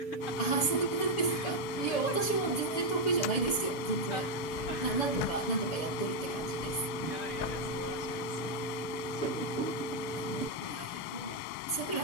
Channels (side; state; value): right; late; 6.9 ms